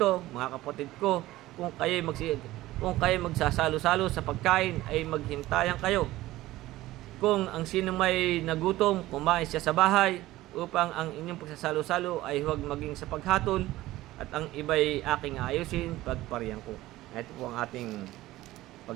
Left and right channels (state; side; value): quieter; left; 16.7 dB